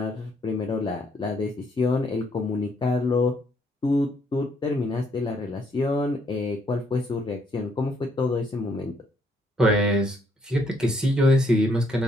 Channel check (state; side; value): normal; both; correlation 0.70